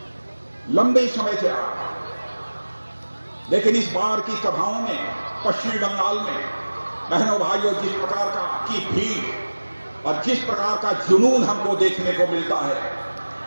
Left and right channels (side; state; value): both; inverted; correlation -1.00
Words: लंबे समय से रहा, लेकिन इस बार की सभाओं में पश्चिमी बंगाल में बहनों भाइयों जिस प्रकार की भीड़ और जिस प्रकार का जुनून हमको देखने को मिलता है,